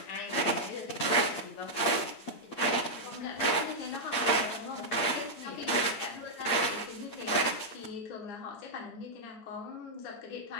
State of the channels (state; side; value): late; right; 8.7 ms